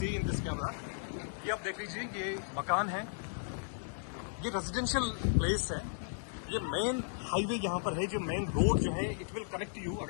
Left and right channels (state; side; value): silent; right; digital silence